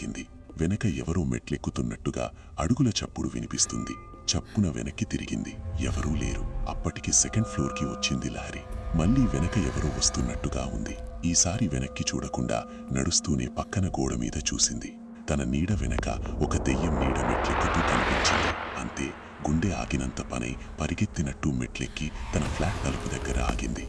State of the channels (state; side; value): identical; both; correlation 1.00